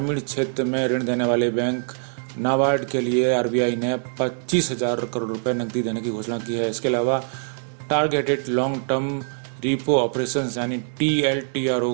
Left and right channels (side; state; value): left; silent; digital silence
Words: क्षेत्र में ऋण देने वाले बैंक नाबार्ड के लिए आरबीआई ने 25,000 करोड़ रुपए नकदी देने की घोषणा की है। इसके अलावा targeted long term repo operations यानी TLTRO